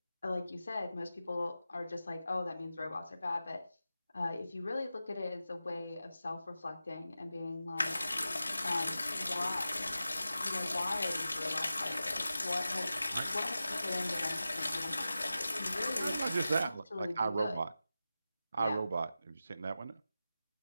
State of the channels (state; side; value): inverted; both; correlation -0.93